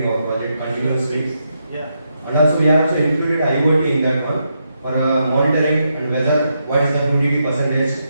our project continuously. Yeah. And also we also included IoT in that one for monitoring and whether what is the humidity percentage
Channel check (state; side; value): inverted; both; correlation -0.82